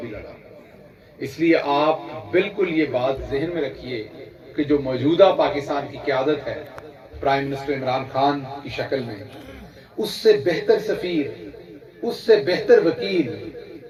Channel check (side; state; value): both; identical; correlation 1.00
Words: بھی لڑا۔ اس لیے آپ بالکل یہ بات ذہن میں رکھیے کہ جو موجودہ پاکستان کی قیادت ہے پرائم منسٹر عمران خان کی شکل میں، اس سے بہتر سفیر، اس سے بہتر وکیل